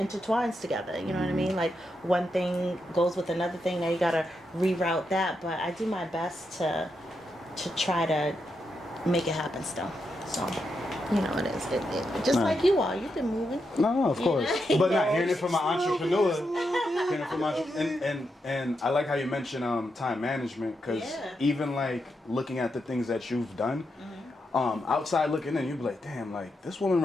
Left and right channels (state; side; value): normal; both; correlation 0.84